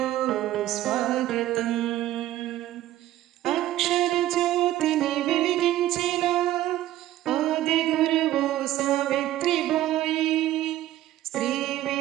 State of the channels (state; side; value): quieter; left; 14.2 dB